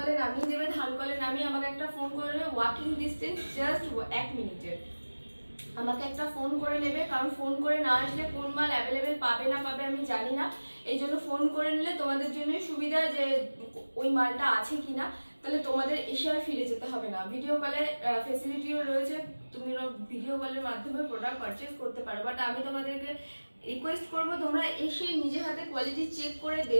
নামিয়ে দেবে, ধানকলে নামিয়ে আমাকে একটা ফোন করে নেবে, ওয়াকিং ডিস্টেন্স জাস্ট 1 মিনিটের। আমাকে একটা ফোন করে নেবে, কারণ ফোন করে না আসলে কোন মাল অ্যাভেলেবেল পাবে না পাবে আমি জানি না। এই জন্য ফোন করে নিলে তোমাদের জন্যই সুবিধা, যে ওই মালটা আছে কিনা, তাহলে তোমাদের এসে আর ফিরে যেতে হবে না। ভিডিও কলের ফেসিলিটিও রয়েছে, তুমি ভিডিও কলের মাধ্যমে প্রোডাক্ট পারচেস করতে পারো। বাট আমি তোমাদেরকে রিকোয়েস্ট করবো তোমরা এসে নিজে হাতে কোয়ালিটি চেক করে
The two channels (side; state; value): both; inverted; correlation -1.00